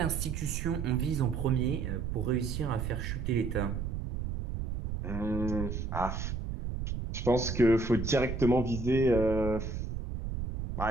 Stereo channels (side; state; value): right; noise; rumble, 4 dB below the sound